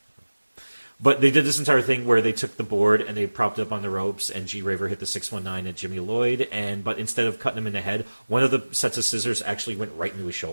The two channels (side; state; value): both; inverted; correlation -1.00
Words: But they did this entire thing where they took the board and they propped up on the ropes, and G. Raver hit the 619 at Jimmy Lloyd, but instead of cutting him in the head, one of the sets of scissors actually went right into his